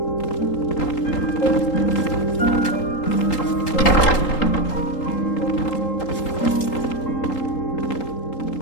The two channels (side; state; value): right; late; 3.8 ms